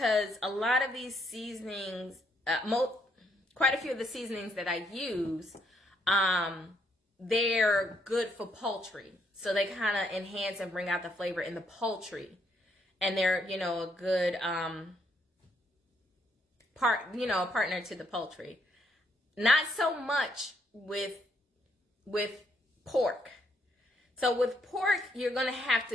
a lot of these seasonings, quite a few of the seasonings that I use, they're good for poultry. So they kind of enhance and bring out the flavor in the poultry. And they're, a good partner to the poultry. Not so much with pork. So with pork, you're going to have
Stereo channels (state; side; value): normal; both; correlation 0.73